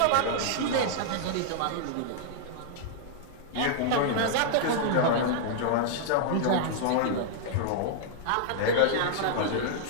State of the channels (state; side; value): different; both; correlation -0.01